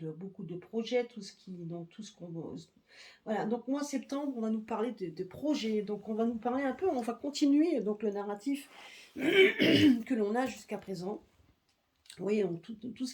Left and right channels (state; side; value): identical; both; correlation 1.00